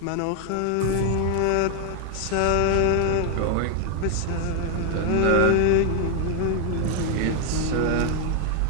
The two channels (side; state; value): both; different; correlation 0.00